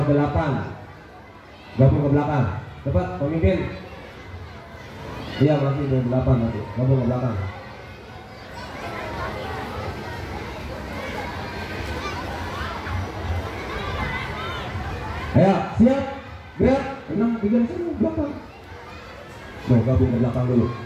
8, gabung ke belakang. Cepat pemimpin. Iya, masih di 8 nanti, gabung ke belakang. Ayo, siap. Gerak, 6, 3, 1, belakang. Tuh, gabung ke belakang dulu.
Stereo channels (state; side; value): identical; both; correlation 1.00